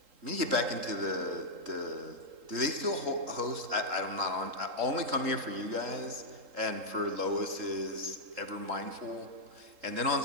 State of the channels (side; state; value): left; late; 3.8 ms